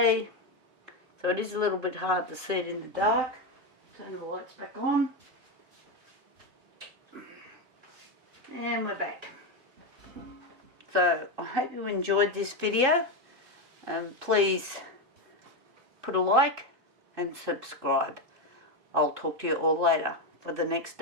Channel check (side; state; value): left; late; 3.8 ms